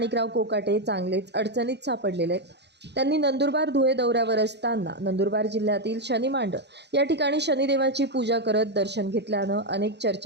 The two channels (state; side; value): late; left; 0.50 ms